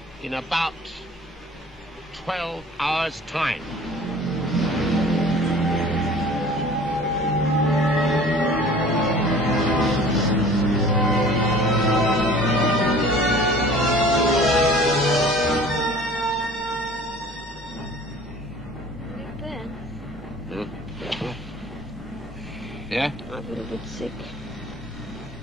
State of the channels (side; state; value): both; normal; correlation 0.47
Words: in about 12 hours' time. Yeah? I'm a little bit sick.